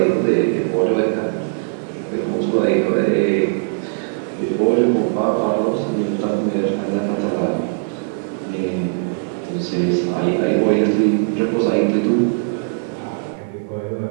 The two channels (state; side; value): silent; left; digital silence